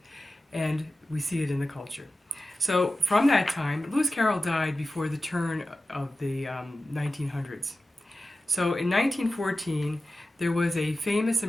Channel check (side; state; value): both; normal; correlation 0.94